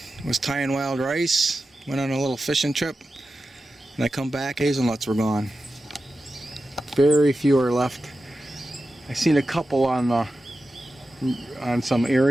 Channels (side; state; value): both; normal; correlation 0.92